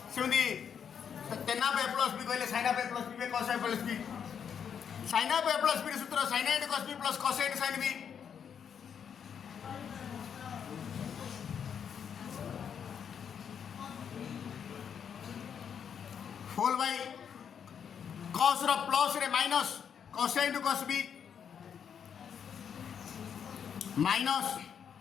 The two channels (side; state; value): right; quieter; 7.7 dB